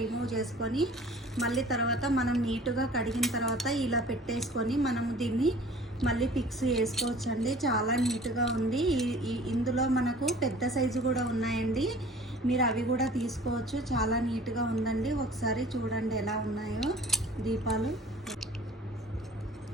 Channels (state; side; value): normal; both; correlation 0.47